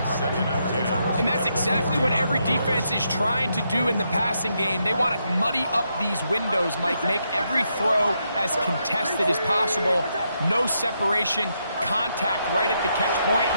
2nd and 10. And that's exactly what every defense is trying to do in the passing game. They want to muddy up these windows, Mike, make every throw as contested as possible. No separation, contact right at the catch point,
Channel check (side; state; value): both; inverted; correlation -0.80